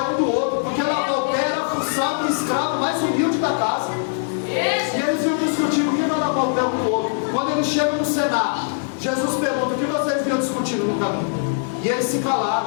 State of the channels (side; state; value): right; silent; digital silence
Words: um do outro, porque lavar o pé era a função do escravo mais humilde da casa. E eles iam discutindo quem vai lavar o pé um do outro. Quando eles chegam no cenário, Jesus pergunta: o que vocês vinham discutindo no caminho? E eles se